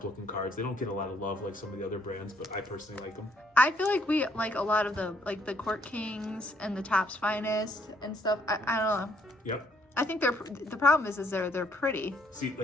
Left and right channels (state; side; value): normal; both; correlation 0.68